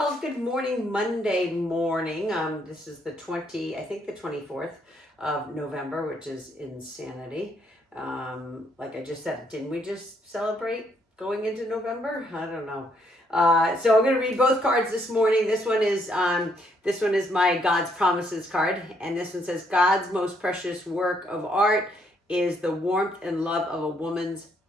good morning, Monday morning. This is the 24th of November, which is insanity. Like I just said, didn't we just celebrate going into November? I don't know. So I'm going to read both cards this morning. This one is my God's Promises card, and this one says, God's most precious work of art is the warmth and love of a woman's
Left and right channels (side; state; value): both; normal; correlation 0.71